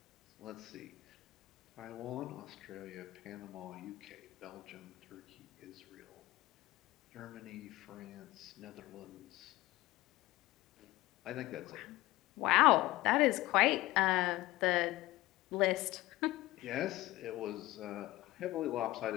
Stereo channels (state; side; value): quieter; right; 18.3 dB